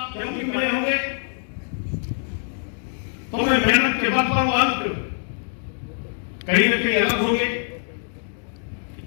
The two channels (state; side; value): silent; right; digital silence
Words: क्योंकि मिले होंगे तो मैं मेहनत के बल पर अंक कहीं न कहीं अलग होंगे।